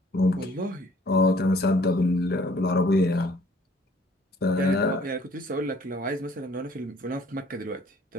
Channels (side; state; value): both; normal; correlation 0.57